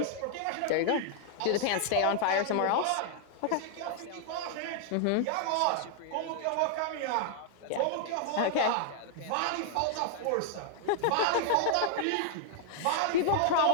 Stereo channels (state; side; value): different; both; correlation -0.01